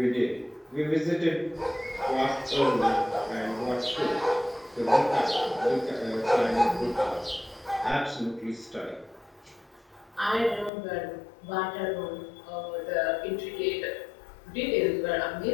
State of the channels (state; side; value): drops out; right; at 10.7 s